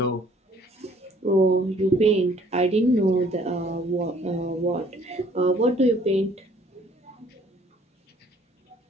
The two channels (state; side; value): normal; both; correlation 0.59